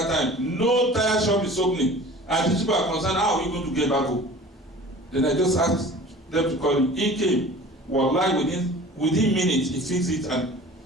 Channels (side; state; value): both; normal; correlation 0.42